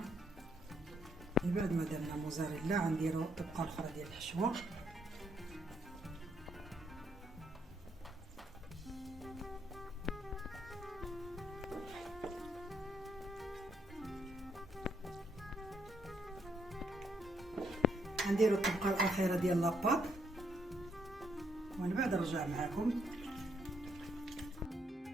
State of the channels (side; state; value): both; normal; correlation 0.74